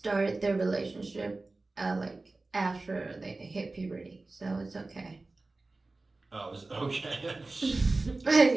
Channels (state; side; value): quieter; left; 3.3 dB